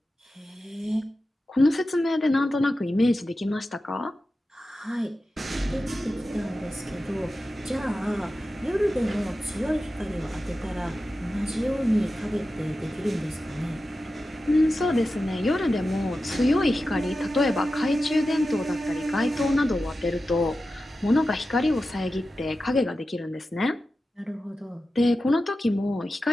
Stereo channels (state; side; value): normal; both; correlation 0.93